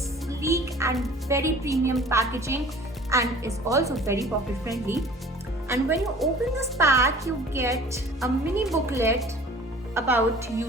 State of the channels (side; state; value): both; normal; correlation 0.47